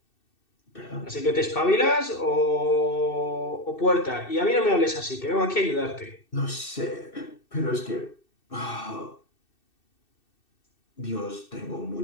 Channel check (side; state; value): right; late; 2.6 ms